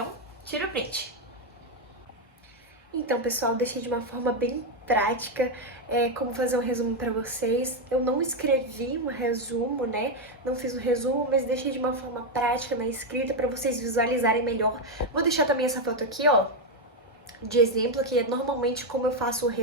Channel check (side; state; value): both; normal; correlation 0.05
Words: tira o print. Então, pessoal, deixei de uma forma bem prática como fazer um resumo para vocês. Eu não escrevi um resumo, né? Não fiz um resumo, mas deixei de uma forma prática na escrita para vocês visualizarem melhor. Vou deixar também essa foto aqui, ó, de exemplo, que é normalmente como eu faço o